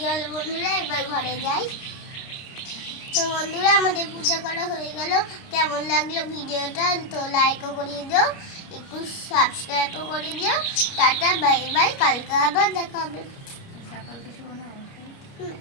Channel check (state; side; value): late; right; 29 ms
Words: চলো বন্ধুরা, এবার ঘরে যাই। তো বন্ধুরা, আমাদের পূজা করা হয়ে গেল। কেমন লাগলো ভিডিওটা? তো লাইকও করিয়ে দিও, একটু সাবস্ক্রাইবও করে দিও। Tata, bye bye. কালকে আবার দেখা হবে।